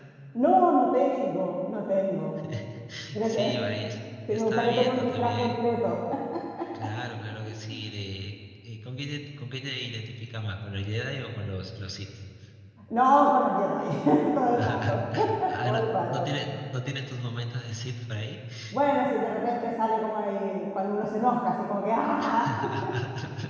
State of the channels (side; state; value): both; identical; correlation 1.00